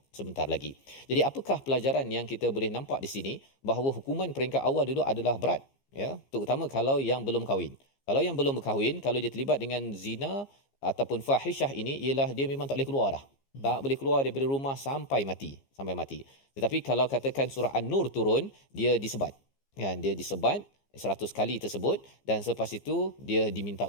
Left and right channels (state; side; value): late; right; 15 ms